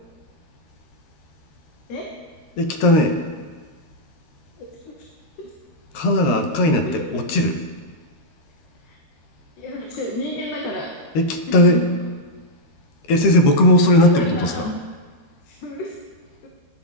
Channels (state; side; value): late; right; 13 ms